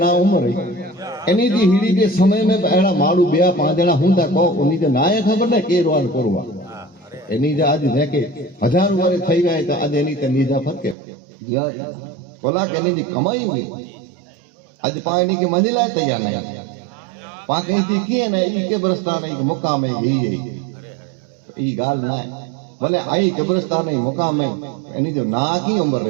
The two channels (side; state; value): left; drops out; at 11.0 s